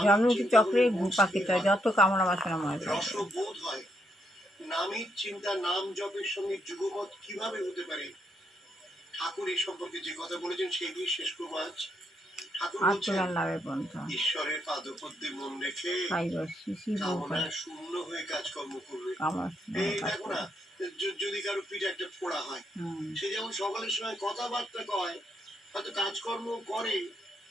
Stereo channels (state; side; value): normal; both; correlation 0.77